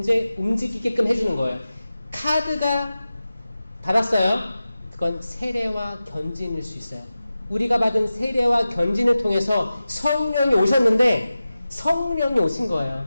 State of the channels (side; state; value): both; inverted; correlation -0.95